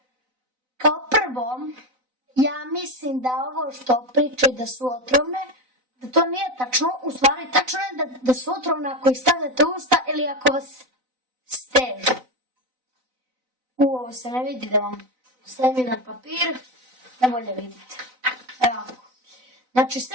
Kao prvo, ja mislim da ovo što pričaju da su otrovne, da to nije tačno, u stvari tačno je da su otrovne ako ih stavljate u usta ili ako vas stežu. Ovo se ne vidi, da vam stavim jedan papir, da bolje vidite. Evo ovako. Znači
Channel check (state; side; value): late; left; 4.0 ms